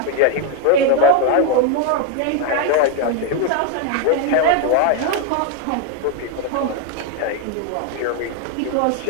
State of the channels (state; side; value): different; both; correlation 0.01